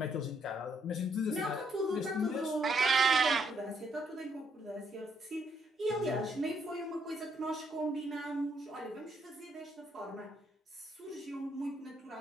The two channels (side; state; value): both; normal; correlation 0.72